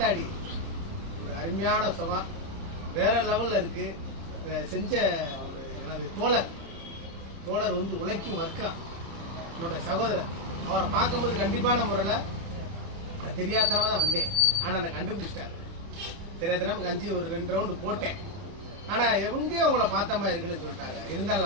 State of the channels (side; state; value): left; late; 30 ms